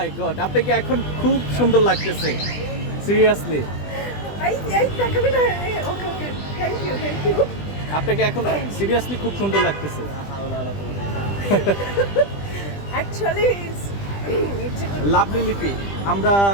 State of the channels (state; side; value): late; right; 20 ms